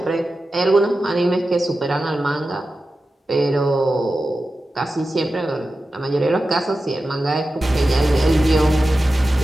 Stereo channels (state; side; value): normal; both; correlation 0.93